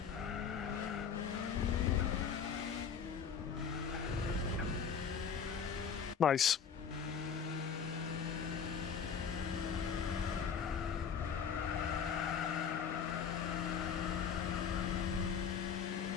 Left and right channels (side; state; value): right; quieter; 6.8 dB